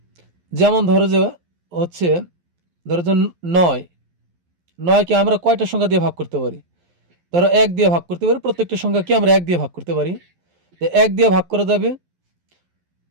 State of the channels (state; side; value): late; left; 11 ms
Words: ধরো যে হচ্ছে, ধরো যে ৯, ৯কে আমরা কয়টা সংখ্যা দিয়ে ভাগ করতে পারি? ধরো ১ দিয়ে ভাগ করতে পারি, প্রত্যেকটা সংখ্যাকে আমরা ১ দিয়ে ভাগ করতে পারি। তো ১ দিয়ে ভাগ করা যাবে,